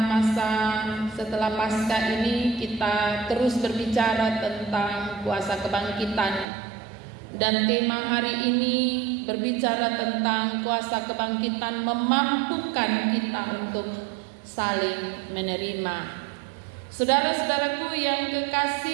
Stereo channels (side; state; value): left; drops out; at 6.5 s